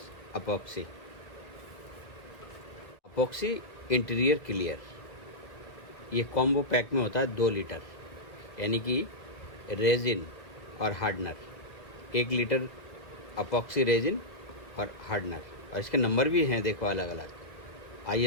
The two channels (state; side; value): late; right; 1.4 ms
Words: epoxy. Epoxy interior clear, ये कॉम्बो पैक में होता है 2 लीटर, यानी कि रेजिन और हार्डनर। 1 लीटर अपॉक्सी रेजिन और हार्डनर, और इसके नंबर भी हैं देखो अलग अलग,